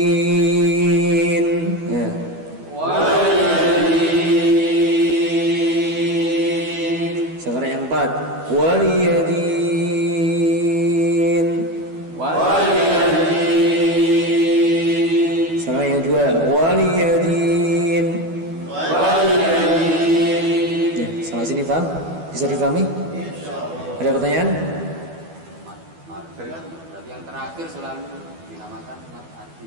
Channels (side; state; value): left; late; 12 ms